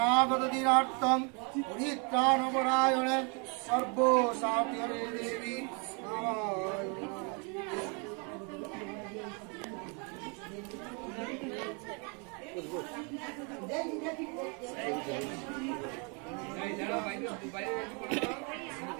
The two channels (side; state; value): left; quieter; 35.0 dB